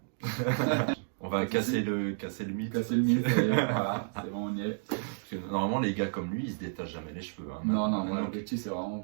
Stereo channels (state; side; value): silent; left; digital silence